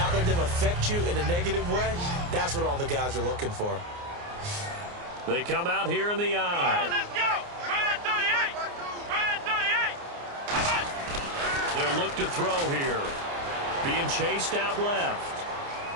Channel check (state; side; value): late; left; 29 ms